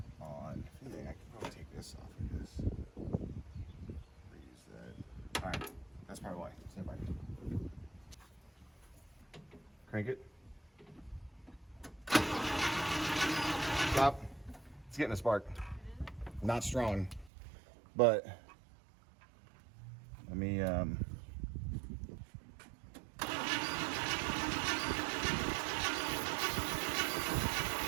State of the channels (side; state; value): left; drops out; at 17.3 s